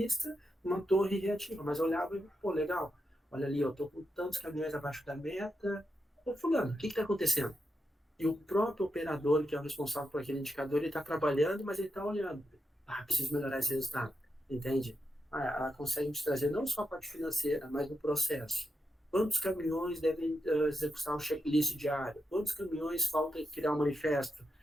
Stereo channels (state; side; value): normal; both; correlation 0.87